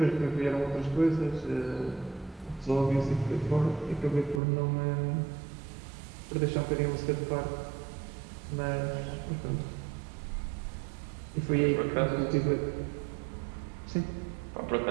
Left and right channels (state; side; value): drops out; left; at 4.4 s